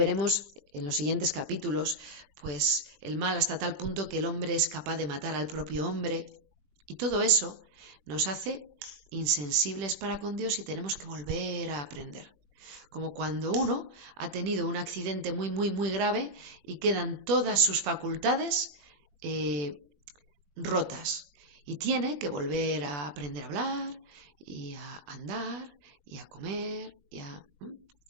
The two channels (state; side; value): late; left; 21 ms